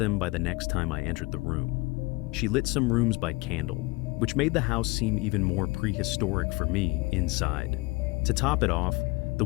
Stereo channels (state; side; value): quieter; right; 24.0 dB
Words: by the next time I entered the room. She lit some rooms by candle, which made the house seem even more prehistoric for me inside. To top it off, the